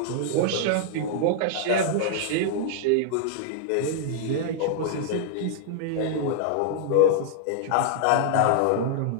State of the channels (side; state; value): both; different; correlation -0.01